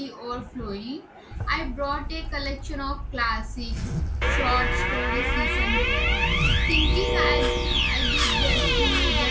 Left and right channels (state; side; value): identical; both; correlation 1.00